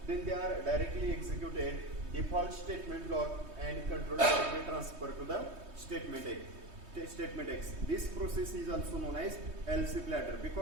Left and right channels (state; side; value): late; left; 3.2 ms